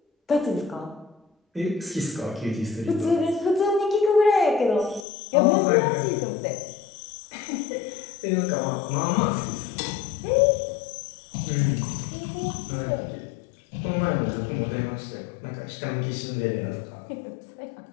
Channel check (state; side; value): drops out; right; at 5.1 s